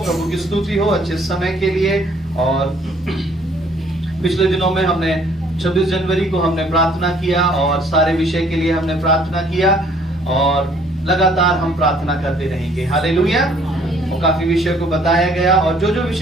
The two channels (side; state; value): both; normal; correlation 0.60